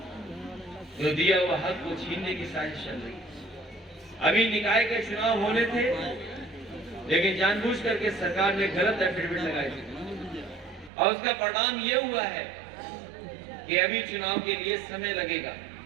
जो दिया हुआ हक को छीनने की साजिश चल रही है। अभी निकाय के चुनाव होने थे, लेकिन जानबूझ करके सरकार ने गलत एफिडेविट लगाई थी और उसका परिणाम ये हुआ है कि अभी चुनाव के लिए समय लगेगा।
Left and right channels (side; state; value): left; drops out; at 10.9 s